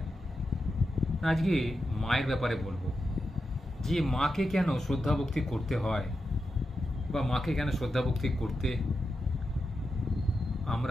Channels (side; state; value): both; normal; correlation 0.88